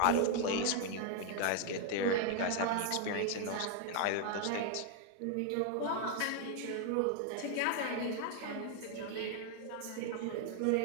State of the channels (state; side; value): different; both; correlation 0.00